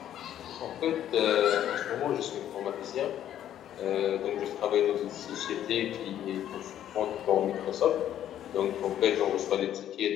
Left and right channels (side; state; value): right; quieter; 11.1 dB